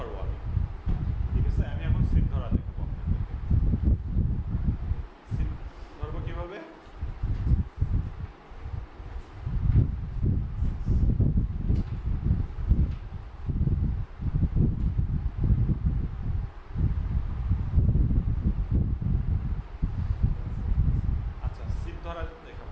আমি, ঠিক আছে? আমি এখন সিট ধরা দেখবো আপনাদেরকে। সিট ধরবো কিভাবে? আচ্ছা, সিট ধরা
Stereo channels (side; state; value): both; identical; correlation 1.00